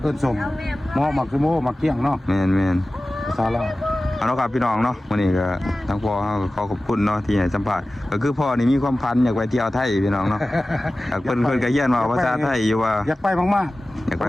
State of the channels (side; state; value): both; normal; correlation 0.96